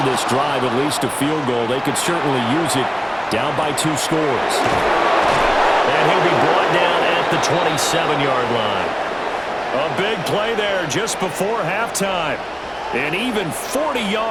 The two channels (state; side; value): identical; both; correlation 1.00